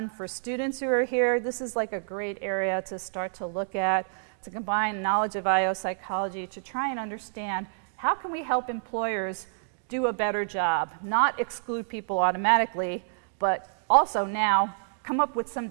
For students who are here, this is like a great area to start to look at, to combine knowledge of IO psychology to try and understand how can we help employers do a better job, not exclude people automatically, but also now come up with some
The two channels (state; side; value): silent; left; digital silence